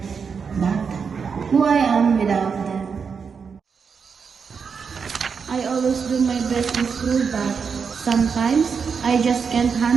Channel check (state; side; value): quieter; left; 6.0 dB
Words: But who I am without them. I always do my best in school, but sometimes I just can't